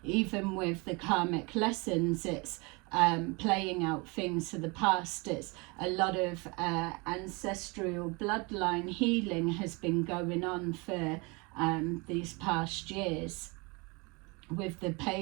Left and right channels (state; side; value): quieter; left; 28.3 dB